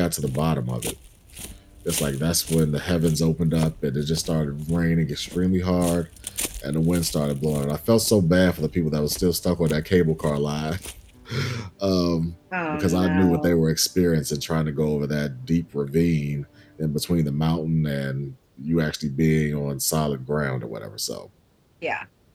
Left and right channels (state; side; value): identical; both; correlation 1.00